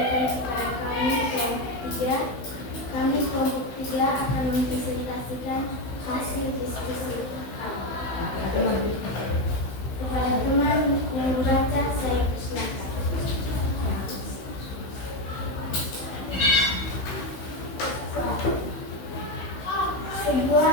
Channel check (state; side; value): late; right; 16 ms